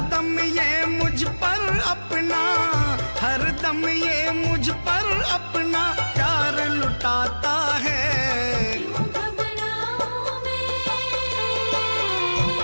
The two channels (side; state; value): both; inverted; correlation -1.00